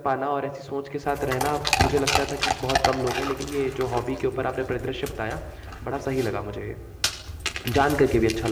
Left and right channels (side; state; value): both; identical; correlation 1.00